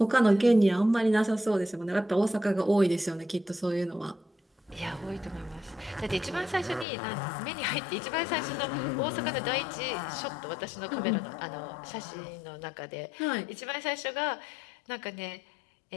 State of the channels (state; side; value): drops out; right; at 6.9 s